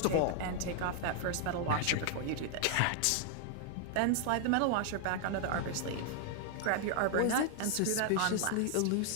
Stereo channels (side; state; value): both; different; correlation 0.00